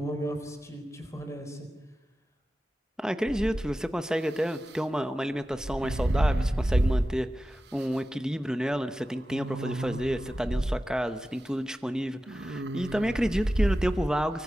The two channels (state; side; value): normal; both; correlation 0.94